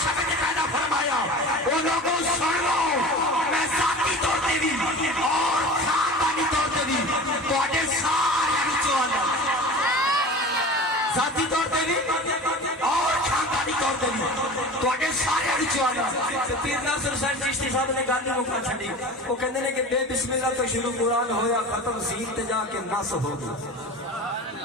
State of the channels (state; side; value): normal; both; correlation 0.36